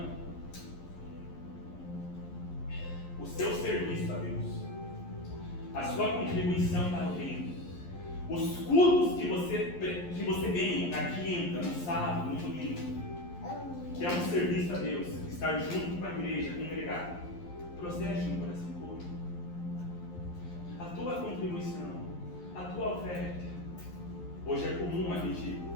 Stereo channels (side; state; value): right; late; 11 ms